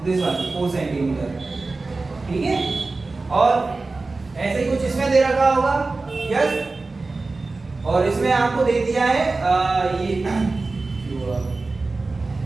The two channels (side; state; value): left; quieter; 3.6 dB